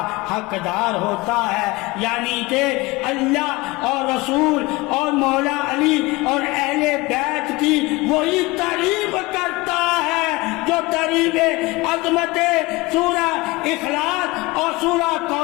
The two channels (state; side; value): quieter; right; 22.4 dB